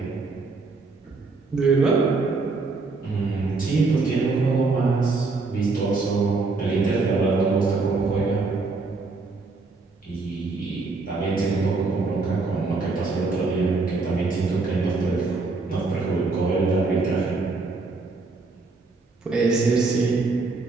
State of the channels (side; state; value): left; quieter; 3.9 dB